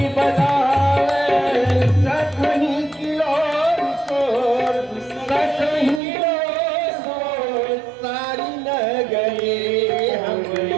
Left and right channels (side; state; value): left; drops out; at 6.0 s